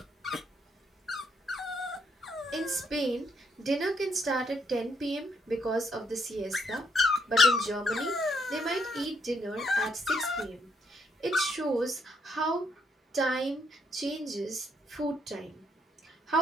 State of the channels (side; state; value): both; normal; correlation 0.74